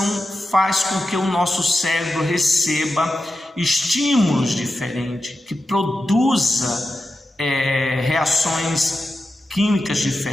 faz com que o nosso cérebro receba estímulos diferentes, que produza reações químicas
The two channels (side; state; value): both; normal; correlation 0.91